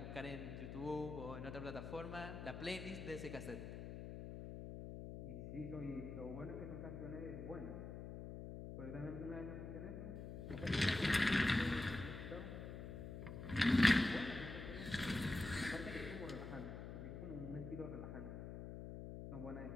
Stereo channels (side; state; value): left; noise; hum, 8 dB below the sound